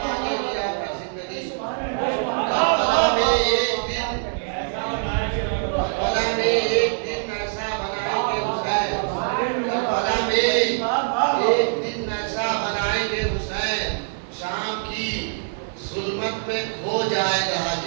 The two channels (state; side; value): silent; left; 63 dB below the other